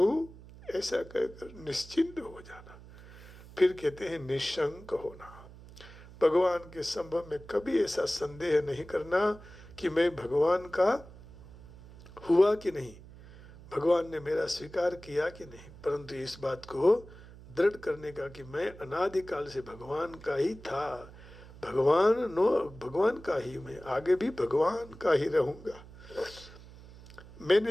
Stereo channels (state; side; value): noise; right; hum, 18 dB below the sound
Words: ऐसा कहकर निश्चिंत हो जाना। फिर कहते हैं निशंक होना। भगवान के संभव में कभी ऐसा संदेह नहीं करना कि मैं भगवान का हुआ कि नहीं, भगवान ने मेरा स्वीकार किया कि नहीं, परंतु इस बात को दृढ़ करने का कि मैं अनादिकाल से भगवान का ही था, भगवान का ही मैं आगे भी भगवान का ही रहूंगा।